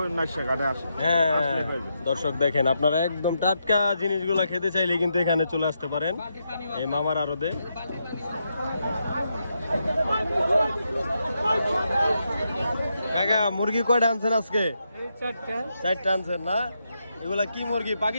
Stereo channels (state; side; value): inverted; both; correlation -0.83